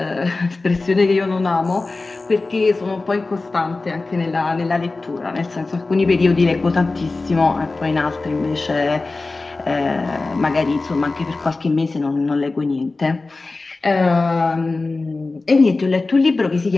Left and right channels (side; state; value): right; quieter; 3.5 dB